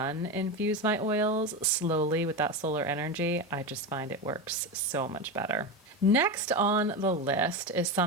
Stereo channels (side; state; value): both; normal; correlation 0.18